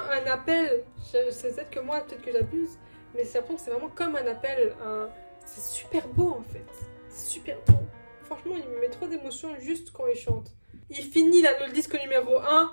appel, c'est peut-être que moi, peut-être que j'abuse, mais c'est l'impression que c'est vraiment comme un appel, c'est super beau en fait, c'est super beau. Franchement, il me met trop d'émotions juste quand il chante. Il finit le disque numéro 1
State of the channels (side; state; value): both; inverted; correlation -1.00